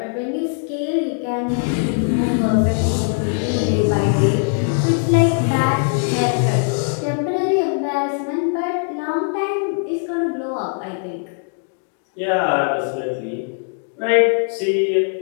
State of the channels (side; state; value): right; silent; 59 dB below the other